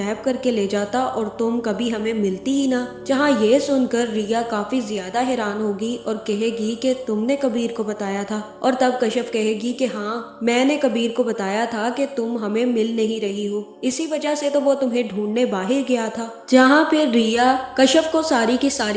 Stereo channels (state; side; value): identical; both; correlation 1.00